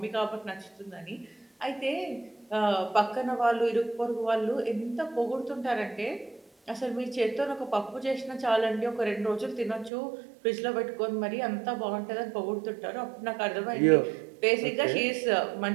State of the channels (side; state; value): left; drops out; at 9.9 s